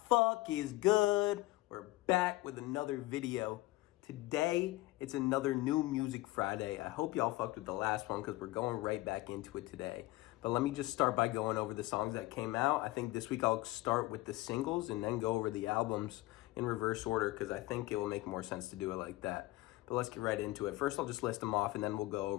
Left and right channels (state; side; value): quieter; right; 18.8 dB